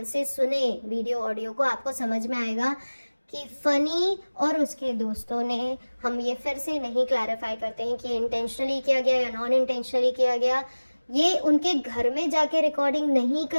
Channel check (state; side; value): inverted; both; correlation -1.00